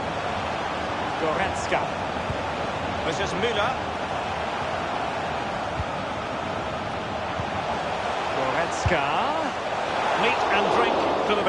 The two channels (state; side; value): identical; both; correlation 1.00